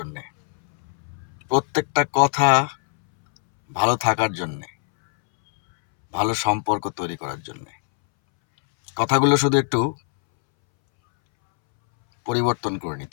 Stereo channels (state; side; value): silent; right; 64 dB below the other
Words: প্রত্যেকটা কথা ভালো থাকার জন্যে, ভালো সম্পর্ক তৈরি করার জন্যে। কথাগুলো শুধু একটু পরিবর্তন করে